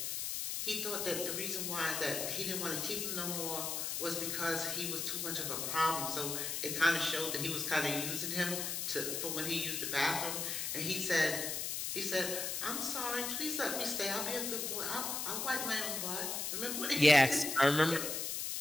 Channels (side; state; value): left; noise; hiss, 2 dB below the sound